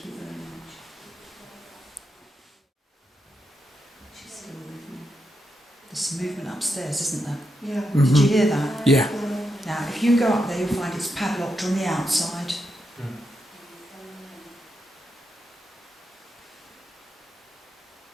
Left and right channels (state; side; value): normal; both; correlation 0.84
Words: you very much. She's still with me. There's some movement upstairs, isn't there? Yeah. Did you hear that? Yeah. Now, if you go up there, you'll find it's padlocked on the outside.